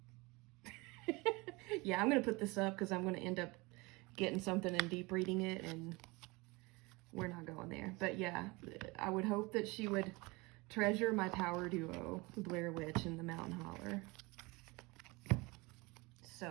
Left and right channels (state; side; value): quieter; left; 24.7 dB